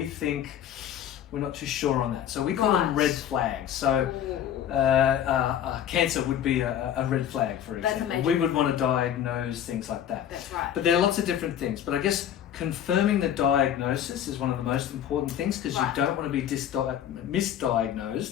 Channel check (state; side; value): quieter; right; 10.0 dB